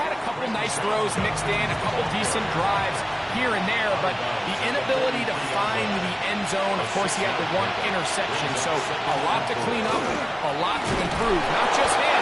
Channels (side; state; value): both; identical; correlation 1.00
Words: a couple nice throws mixed in, a couple decent drives here and there, but the inability to find the end zone, of course, he had the 1 interception, so a lot to clean up, a lot to improve. Not just